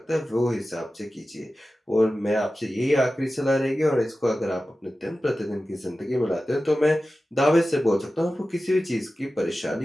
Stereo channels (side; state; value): both; normal; correlation 0.94